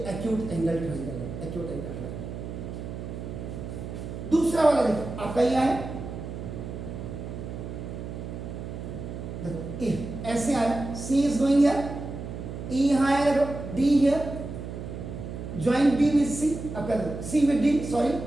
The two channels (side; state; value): right; noise; hum, 8 dB below the sound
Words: एंगल ट्रायंगल है, एक्यूट एंगल ट्रायंगल। दूसरा वाला देखो आपका ये है, देखो ए ऐसे आया, C is going here, E यहां आया, देखो D here, join B with C, आपका देखो सी विद डी, सॉरी,